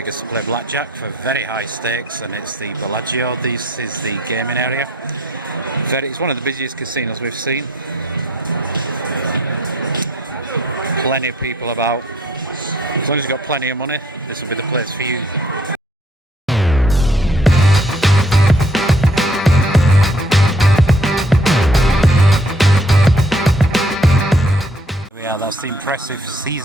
to play blackjack for very high stakes, and it's the Bellagio. This is the gaming area. It's one of the busiest casinos we've seen. Plenty of people about. As long as you've got plenty of money, this will be the place for you. Yeah, that's the impressive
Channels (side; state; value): both; normal; correlation 0.61